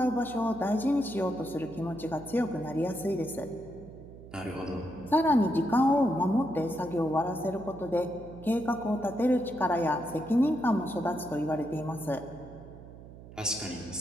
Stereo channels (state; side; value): noise; right; hum, 17 dB below the sound